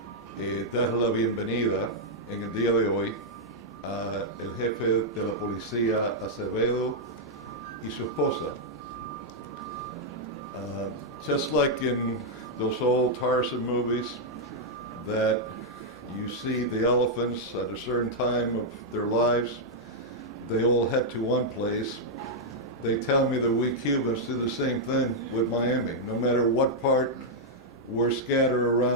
dar la bienvenida en el día de hoy a el jefe de la policía Acevedo y su esposa. Just like in those old Tarzan movies that you see the elephants at a certain time of their lives, they all head to one place. They tell me that we Cubans do the same thing with Miami. No matter what part we're scattered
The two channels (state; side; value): normal; both; correlation -0.04